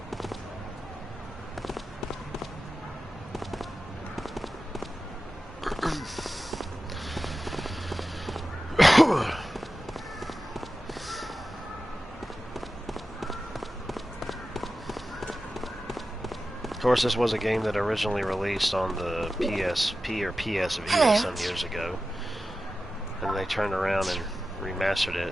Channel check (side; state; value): both; normal; correlation 0.93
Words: Of course, this was a game that originally released on the PSP or PS Vita some years ago, and they turned around and remastered